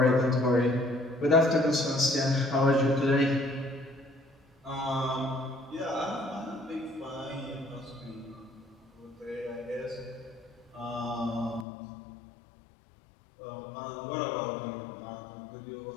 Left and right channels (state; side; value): drops out; right; at 11.7 s